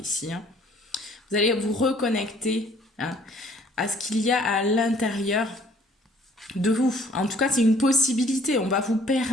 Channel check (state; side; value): normal; both; correlation 0.58